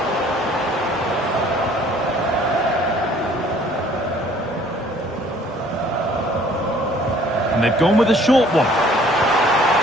And they've gone with a short one.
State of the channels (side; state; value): both; normal; correlation 0.56